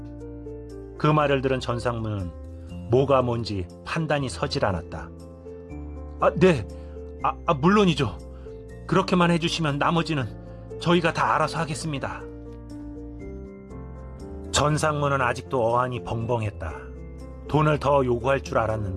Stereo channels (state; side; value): identical; both; correlation 1.00